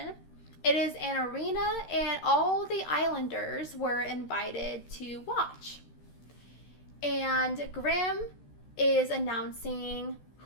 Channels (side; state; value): right; late; 14 ms